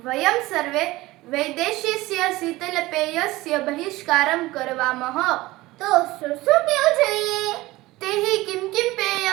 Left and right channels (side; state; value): left; quieter; 19.1 dB